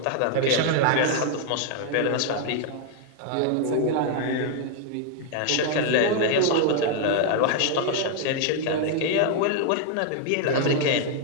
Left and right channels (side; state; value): both; different; correlation 0.00